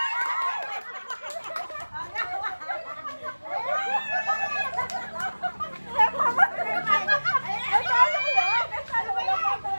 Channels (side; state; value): both; inverted; correlation -1.00